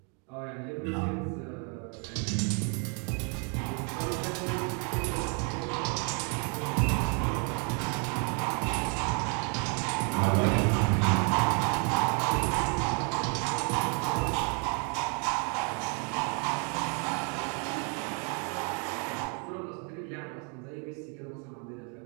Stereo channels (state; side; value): quieter; left; 37.2 dB